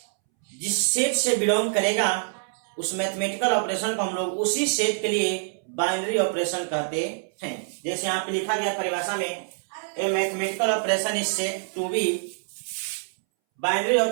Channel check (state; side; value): silent; left; 61 dB below the other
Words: जिस सेट से बिलोंग करेगा उस मैथमेटिकल ऑपरेशन को हम लोग उसी सेट के लिए बाइनरी ऑपरेशन कहते हैं। जैसे यहाँ पे लिखा गया परिभाषा में, a mathematical operation is set to be binary